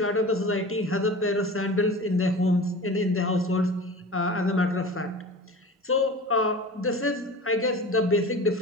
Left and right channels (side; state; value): both; normal; correlation 0.36